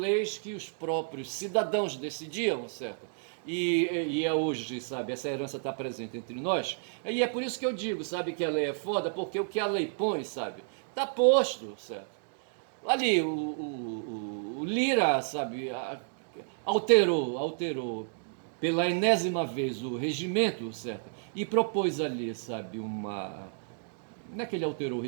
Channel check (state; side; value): silent; left; digital silence